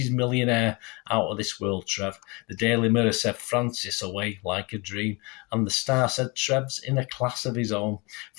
millionaire. Out of this world, Trev. The Daily Mirror said, Francis away like a dream. And the Star said, Trev's in a class of his own.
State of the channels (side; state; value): right; quieter; 27.9 dB